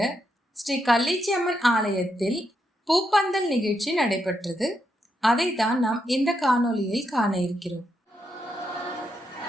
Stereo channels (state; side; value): normal; both; correlation 0.81